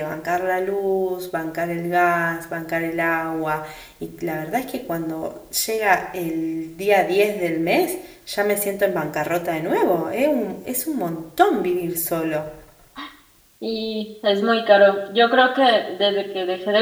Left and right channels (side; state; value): both; identical; correlation 1.00